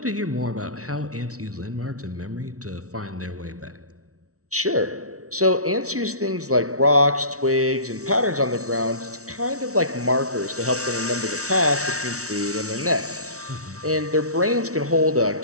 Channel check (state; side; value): late; left; 0.64 ms